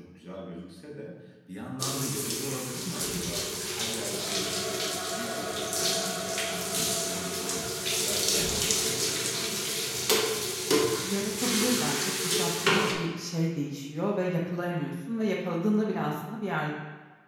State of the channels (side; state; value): both; identical; correlation 1.00